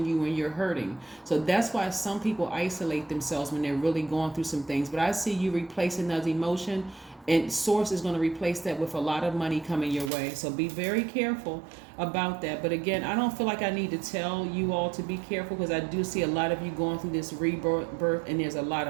you when you're hurting. So that's why some people isolate themselves when they're really going through some things. But I see you replacing those emotion, and source is going to replace that with a lot of money coming your way. So be very careful about that. But again, I don't feel like I need to tell you all to be careful, because I do see a lot of you going through this rebirth, and there's a lot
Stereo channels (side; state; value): left; drops out; at 10.1 s